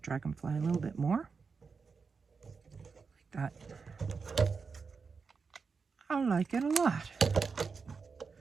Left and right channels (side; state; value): left; quieter; 5.1 dB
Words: dragonfly a little bit more. Like that. I like it a lot.